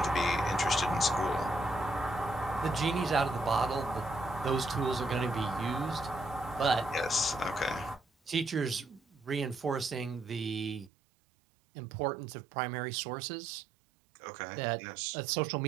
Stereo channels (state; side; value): drops out; left; at 10.9 s